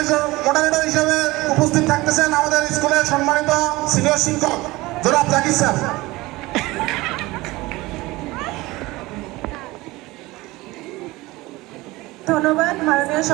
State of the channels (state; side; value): quieter; left; 20.4 dB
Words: মডারেটর হিসেবে উপস্থিত থাকতেছেন আমাদের স্কুলের সম্মানিত সিনিয়র শিক্ষক জনাব জাকির স্যার। ধন্যবাদ মাননীয়